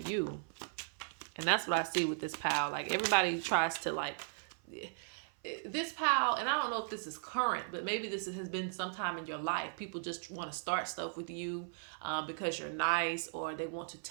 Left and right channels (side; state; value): left; silent; 53 dB below the other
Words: And that's what I see with this pile. Like, everybody tries to, like, this pile, and I don't know if this is current, but maybe this has been sometime in your life. People just want to start stuff with you because you're nice, or they want to